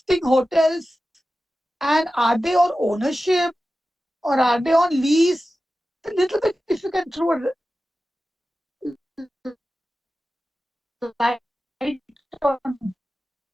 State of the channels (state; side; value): normal; both; correlation 0.94